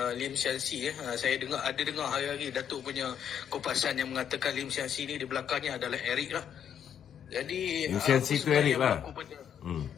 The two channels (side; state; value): right; quieter; 8.8 dB